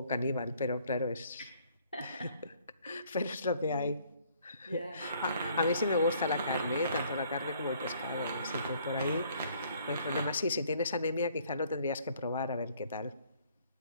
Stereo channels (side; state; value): both; inverted; correlation -0.61